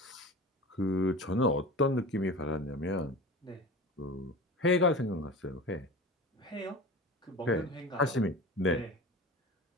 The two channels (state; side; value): normal; both; correlation 0.34